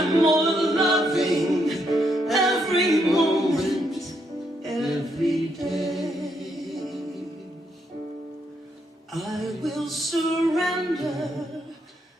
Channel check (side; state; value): both; normal; correlation 0.76